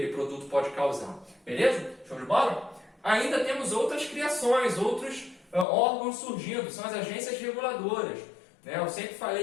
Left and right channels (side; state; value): right; drops out; at 5.7 s